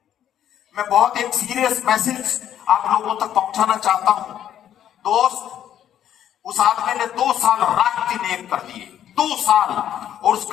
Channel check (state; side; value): quieter; right; 10.5 dB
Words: मैं बहुत एक सीरियस मैसेज आप लोगों तक पहुंचाना चाहता हूं। दोस्त, उस आदमी ने 2 साल रात दिन एक कर दिए, 2 साल। और